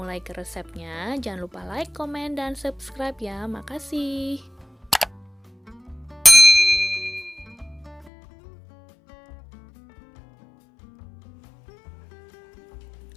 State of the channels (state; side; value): drops out; right; at 8.1 s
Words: ke resepnya, jangan lupa like, komen, dan subscribe ya. Makasih.